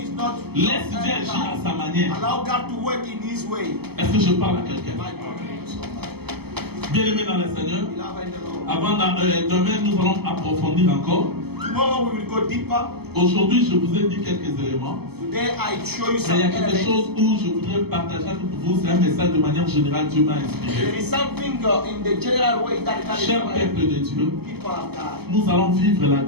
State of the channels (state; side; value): late; left; 0.96 ms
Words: Laisse Dieu agir à sa manière. Est-ce que je parle à quelqu'un? Bien-aimés dans le Seigneur, demain nous allons approfondir encore. Aujourd'hui, je vous ai dit quelques éléments. Mais il y a quelque chose où je voudrais partager avec vous. C'est un message de manière générale. Dieu m'a inspiré. Cher peuple de Dieu, nous allons vivre la